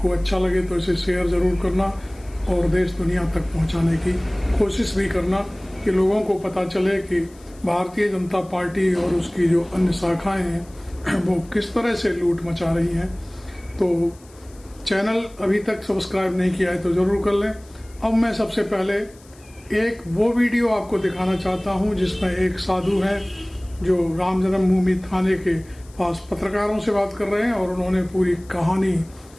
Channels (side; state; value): left; noise; hiss, 26 dB below the sound